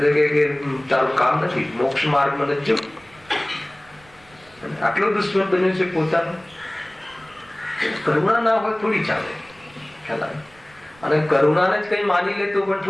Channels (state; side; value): noise; right; rumble, 28 dB below the sound